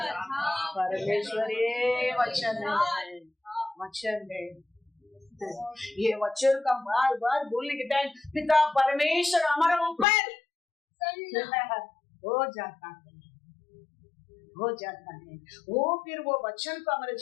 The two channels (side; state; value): right; drops out; at 10.1 s